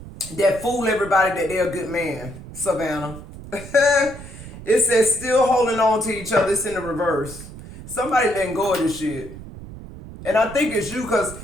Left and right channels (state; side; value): noise; right; rumble, 14 dB below the sound